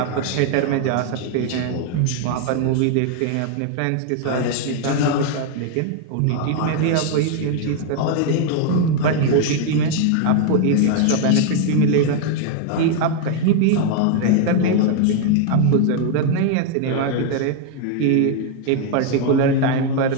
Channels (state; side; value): different; both; correlation 0.00